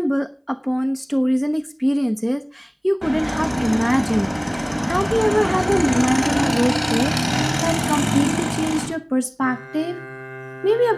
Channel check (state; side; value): identical; both; correlation 1.00